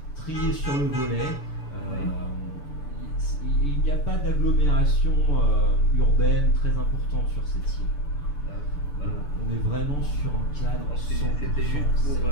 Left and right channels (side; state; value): right; late; 6.9 ms